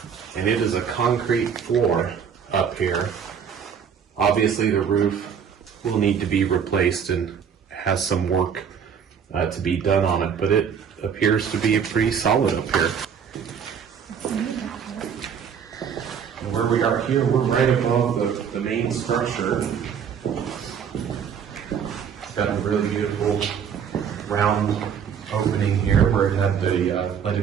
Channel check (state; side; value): quieter; left; 7.5 dB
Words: and it is a concrete floor up here. Obviously, the roof will need to be replaced and has some work to be done on it, but it appears to be pretty solid up here. And where we are here, we're right above the main structure. It's got a really beautiful round opening here where it had the